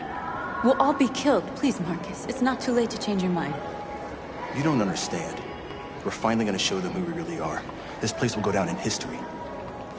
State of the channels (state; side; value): identical; both; correlation 1.00